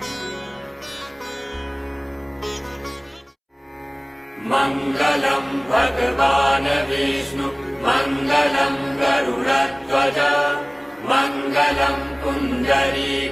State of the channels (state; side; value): identical; both; correlation 1.00